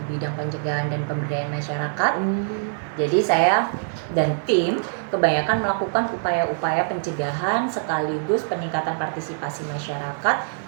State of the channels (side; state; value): left; silent; digital silence